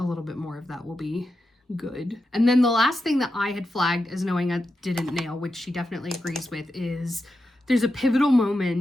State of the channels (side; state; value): both; normal; correlation 0.88